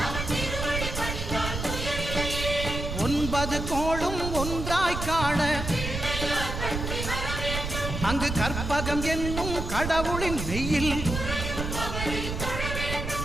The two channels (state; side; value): noise; right; rumble, 4 dB below the sound